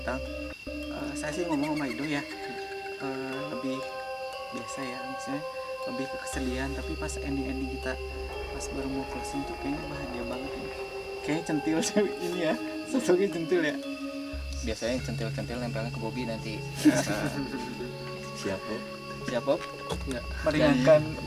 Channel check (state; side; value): identical; both; correlation 1.00